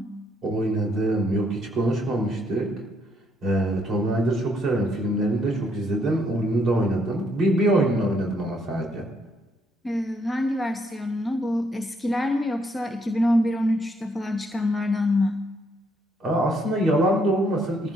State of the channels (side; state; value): both; normal; correlation 0.72